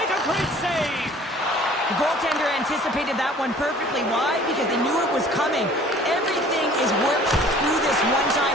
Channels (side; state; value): both; normal; correlation 0.51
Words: a great save. The goaltender anticipated that one perfectly. Why? Because they knew it was coming. Everything is worked through this